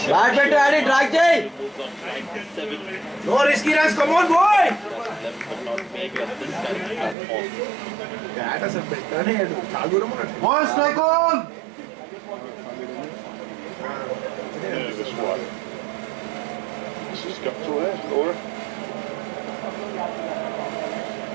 Bad bet to Addy, drag Jay. Moves on to 97. No risky runs, come on boy! Left but not make up this kind of platform. One strike on. Nervous one. This has got to her, Laura.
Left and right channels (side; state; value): left; drops out; at 7.2 s